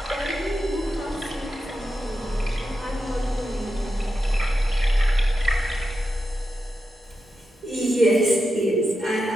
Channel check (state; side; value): normal; both; correlation 0.88